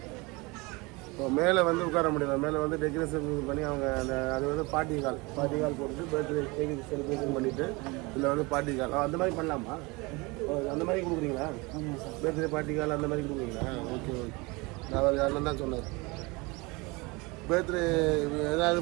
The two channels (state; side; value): quieter; left; 25.5 dB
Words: இப்போ மேலே வந்து உட்கார முடியல, மேலே வந்து டெக்கரேஷன் பண்ணி அவங்க அந்த அது வந்து பார்ட்டி கால் போட்டு பர்த்டே கேக் செலிப்ரேஷன் பண்ணிவிட்டு இதில் வந்து பார்ட்டி கால் அந்த மாதிரி பண்ணலாமா? அந்த மாதிரி கொடுக்குறீங்களா? பர்த்டே பார்ட்டி கால் அந்த மாதிரி கொடுக்குறீங்களா? Okay okay. நான் யாரும் தான் சொன்னார் பர்த்டே ஏதாவது